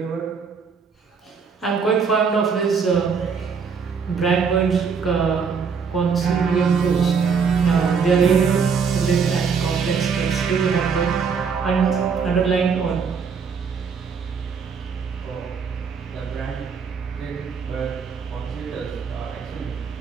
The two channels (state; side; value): quieter; left; 5.9 dB